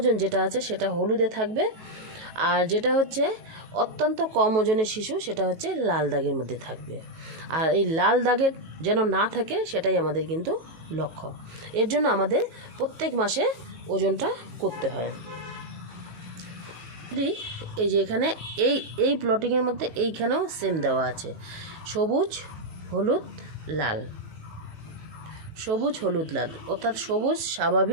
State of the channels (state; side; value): late; left; 18 ms